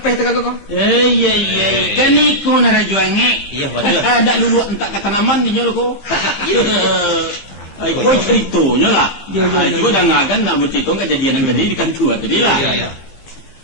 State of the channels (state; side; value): late; right; 15 ms